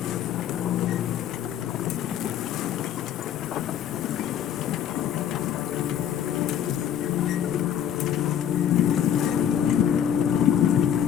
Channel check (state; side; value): quieter; right; 9.7 dB